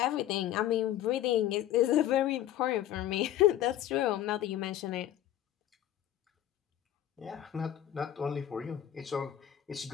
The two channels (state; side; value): quieter; right; 12.0 dB